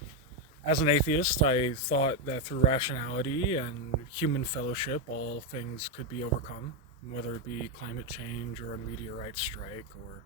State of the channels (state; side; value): normal; both; correlation 0.04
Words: As an atheist, I thought that through rationality and human fellowship, all things could be overcome, whether it be climate change or a meteorite strike or